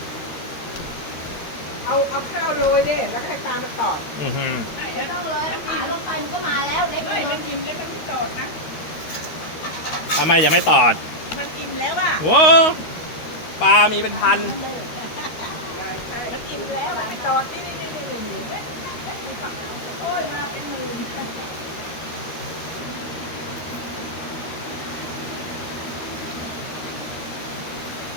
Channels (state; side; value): late; right; 13 ms